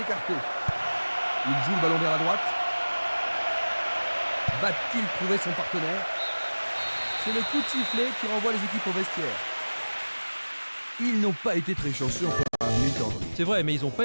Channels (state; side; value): inverted; both; correlation -1.00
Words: écarté. Il joue le ballon vers la droite. Va-t-il trouver son partenaire? C'est le coup de sifflet qui renvoie les équipes au vestiaire. Ils n'ont pas été très chanceux en première mi-temps. C'est vrai, mais ils n'ont